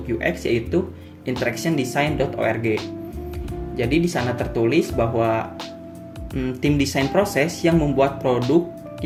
UX yaitu interactiondesign.org. Jadi di sana tertulis bahwa tim desain proses yang membuat produk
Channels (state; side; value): identical; both; correlation 1.00